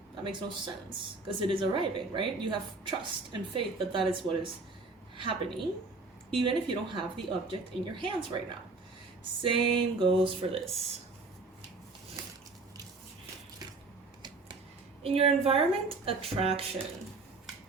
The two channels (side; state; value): left; quieter; 3.8 dB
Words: That makes no sense, because it is arriving, right? You have trust and faith that that is what is happening, even if you don't have the object in your hands right now. Same goes for this. In your environment, attraction.